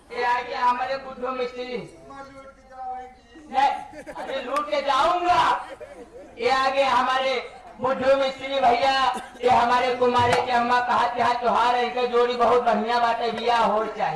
ये आगे हमारे बुद्धो मिस्त्री नहीं अरे लूट के जाऊंगा ये आगे हमारे बुद्धो मिस्त्री भैया ये हमारे कुमारे के अम्मा कहा यहाँ त्योहार है इनका जोड़ी बहुत बढ़िया बात है बिया हो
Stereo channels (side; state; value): both; identical; correlation 1.00